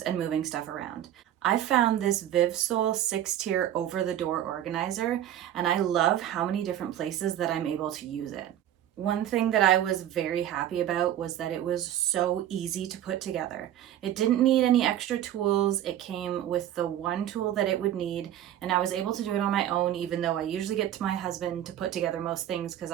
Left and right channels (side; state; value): left; quieter; 11.6 dB